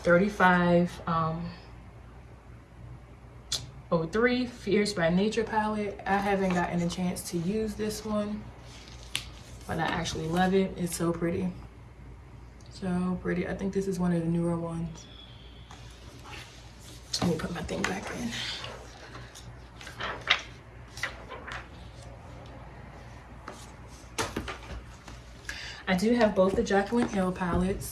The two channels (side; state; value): both; identical; correlation 1.00